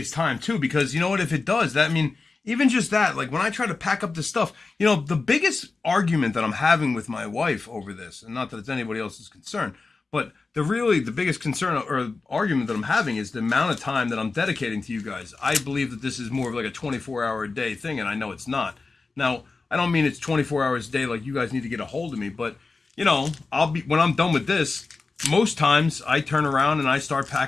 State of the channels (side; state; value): right; quieter; 3.9 dB